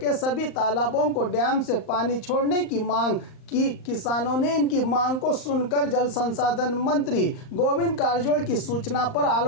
सभी तालाबों को डैम से पानी छोड़ने की मांग कि किसानों ने इनकी मांग को सुनकर जल संसाधन मंत्री गोविंद कारजोल की सूचना पर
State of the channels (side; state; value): right; late; 38 ms